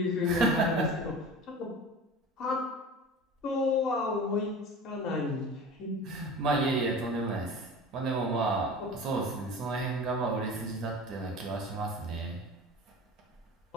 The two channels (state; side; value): normal; both; correlation 0.36